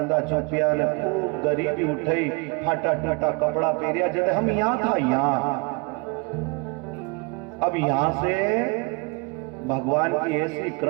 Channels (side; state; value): left; quieter; 29.8 dB